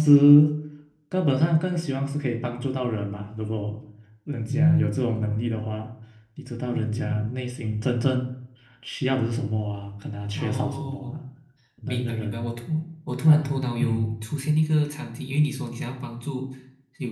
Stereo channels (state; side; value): identical; both; correlation 1.00